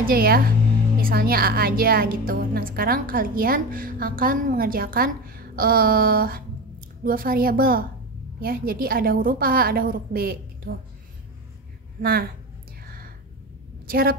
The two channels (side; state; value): both; normal; correlation 0.25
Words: ya, misalnya A aja gitu. Nah, sekarang kalian akan mengerjakan 2 variabel ya. Jadi ada huruf A, ada huruf B gitu. Nah, cara